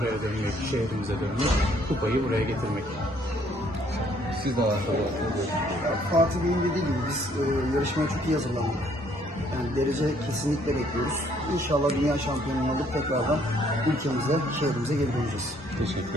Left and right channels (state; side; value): normal; both; correlation 0.64